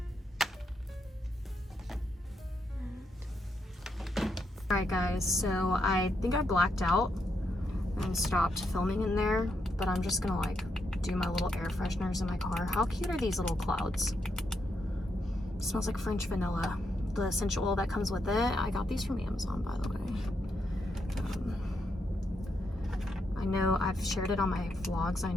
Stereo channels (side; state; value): both; normal; correlation 0.81